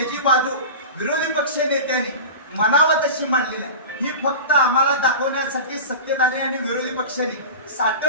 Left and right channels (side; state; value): both; inverted; correlation -0.31